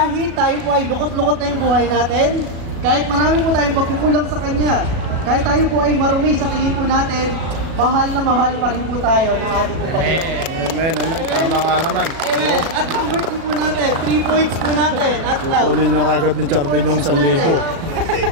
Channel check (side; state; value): left; late; 37 ms